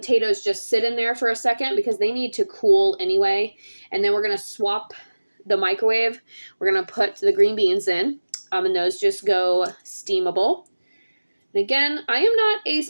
just sit in there for a second because they need to cool anyway. And then we're going to swap the microwave. We're going to put the green beans in, and those just go steamable. And again, I am not a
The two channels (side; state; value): both; inverted; correlation -1.00